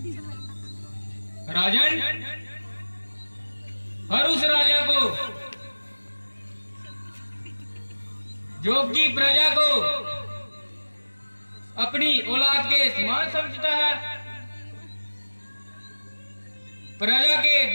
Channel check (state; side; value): inverted; both; correlation -1.00